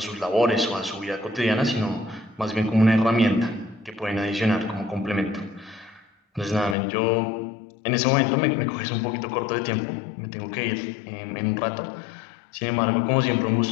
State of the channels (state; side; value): drops out; right; at 6.8 s